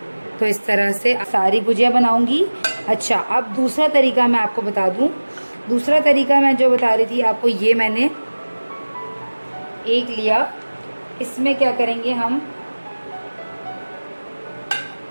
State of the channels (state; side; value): inverted; both; correlation -1.00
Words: तो इस तरह से सारी गुजिया बनाऊंगी। अच्छा, अब दूसरा तरीका मैं आपको बता दूं। दूसरा तरीका मैं जो बता रही थी आपको, ये मैंने एक लिया, इसमें क्या करेंगे, हम